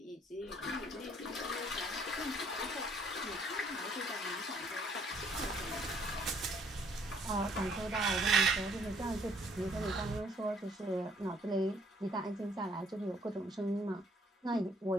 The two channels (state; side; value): normal; both; correlation 0.63